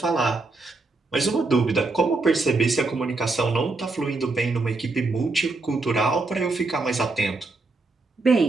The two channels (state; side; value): quieter; left; 3.5 dB